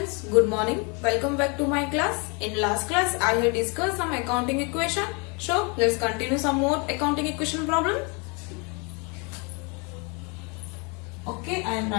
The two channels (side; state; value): right; quieter; 32.3 dB